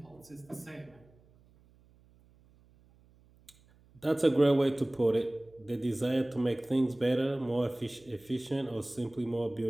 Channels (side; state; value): right; noise; hum, 29 dB below the sound